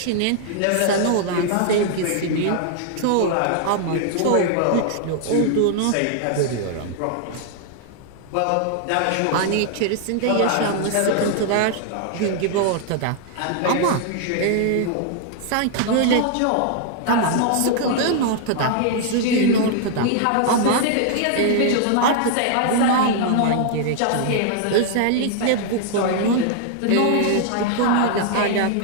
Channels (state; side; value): different; both; correlation 0.00